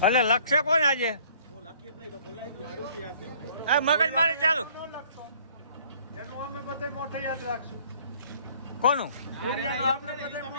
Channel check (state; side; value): inverted; both; correlation -0.56